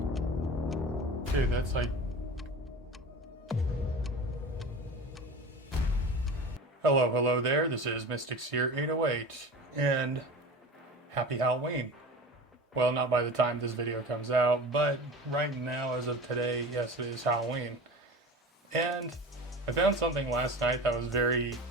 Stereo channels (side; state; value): both; normal; correlation 0.34